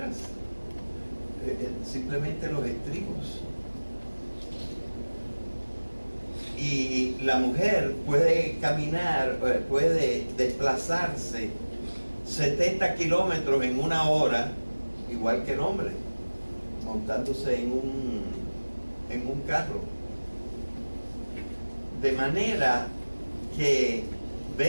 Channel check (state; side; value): inverted; both; correlation -1.00